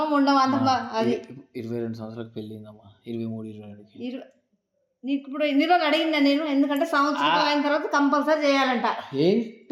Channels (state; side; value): identical; both; correlation 1.00